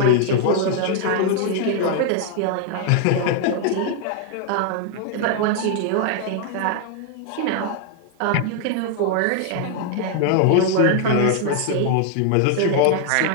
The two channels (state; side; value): different; both; correlation 0.00